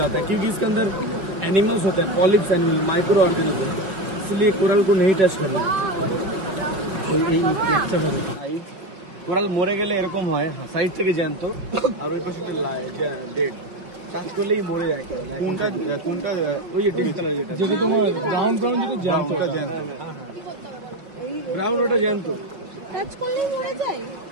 है, क्योंकि इसके अंदर एनिमल्स होते हैं, पॉलिप्स एनिमल, माइक्रो ऑर्गेनिज्म, इसलिए कोरल को नहीं टच करना। কোরাল মরে গেলে এরকম হয়, সাইড থেকে জ্যান্ত, আর ওই পাশে ডেড। টাচ করলেই মরে যায় কোরাল। কোনটা কোনটা? ওই যে ডিপ কালার, যেটা তোমার ব্রাউন ব্রাউন, যেটা জ্যান্ত, ওটা জ্যান্ত। ব্রাউন ওটা জ্যান্ত, টাচ করলেই মরে যায়।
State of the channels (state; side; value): late; left; 5.4 ms